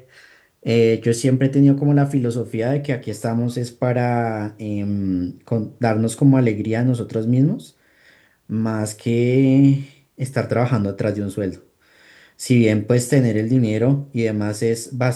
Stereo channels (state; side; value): identical; both; correlation 1.00